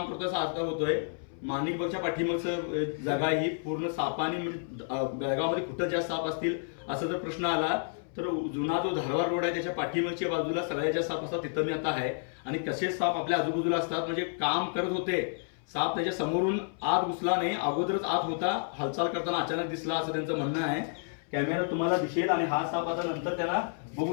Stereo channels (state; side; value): silent; right; 58 dB below the other